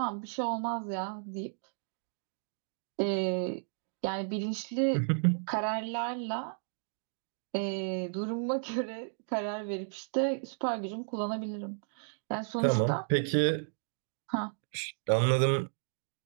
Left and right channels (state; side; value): silent; left; digital silence